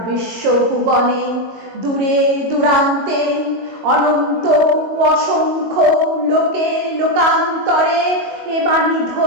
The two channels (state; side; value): late; left; 22 ms